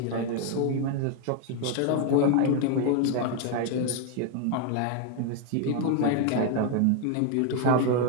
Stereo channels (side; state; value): both; different; correlation 0.01